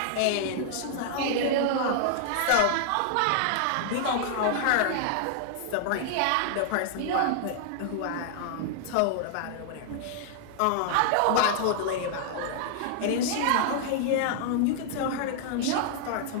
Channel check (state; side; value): different; both; correlation -0.01